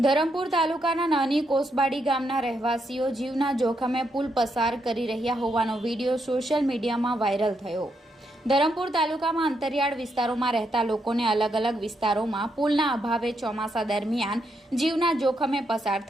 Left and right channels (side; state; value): both; normal; correlation 0.79